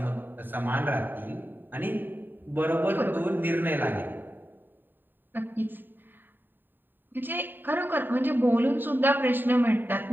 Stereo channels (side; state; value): left; late; 0.093 ms